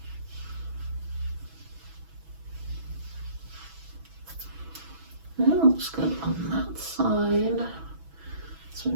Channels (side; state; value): left; late; 6.1 ms